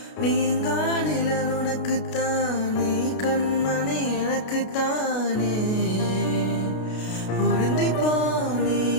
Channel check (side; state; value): right; late; 33 ms